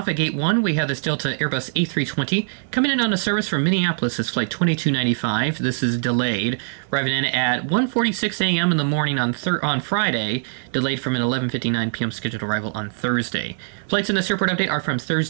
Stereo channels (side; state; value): left; silent; digital silence